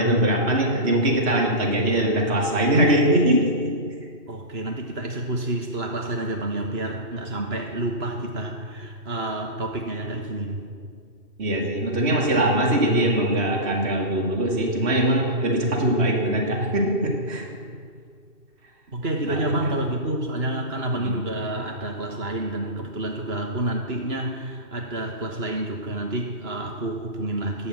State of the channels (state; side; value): late; left; 2.7 ms